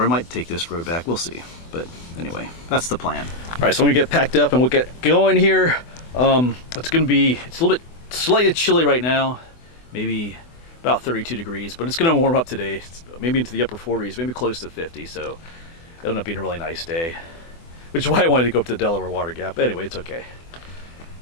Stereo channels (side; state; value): right; late; 24 ms